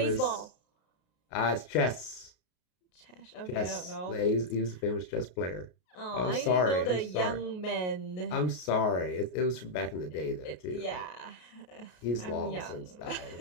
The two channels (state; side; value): late; right; 33 ms